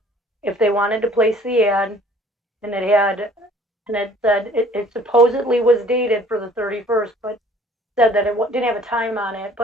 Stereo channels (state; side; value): normal; both; correlation 0.54